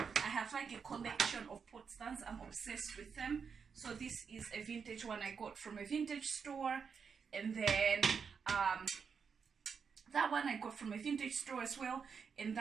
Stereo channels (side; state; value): left; quieter; 6.1 dB